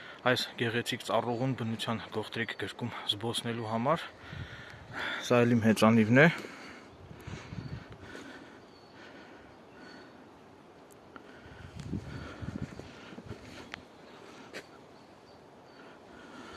այս գեղեցիկ ծառուղուն բնության գողտրիկ գրկում զբոսնելու համար, սա էլ իմ հեծանիվն է,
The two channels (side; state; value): both; identical; correlation 1.00